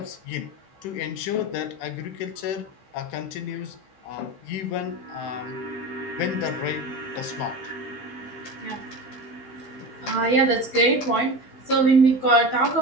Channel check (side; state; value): right; late; 16 ms